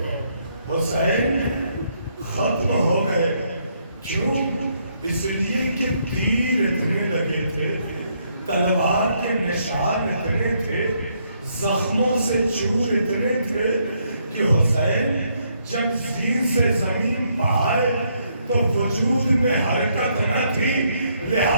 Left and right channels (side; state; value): both; inverted; correlation -0.73